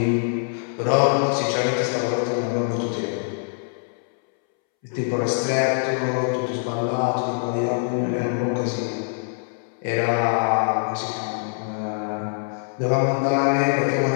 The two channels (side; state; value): right; silent; 63 dB below the other